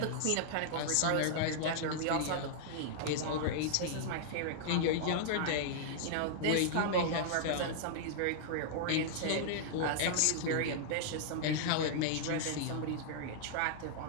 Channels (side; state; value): both; different; correlation -0.01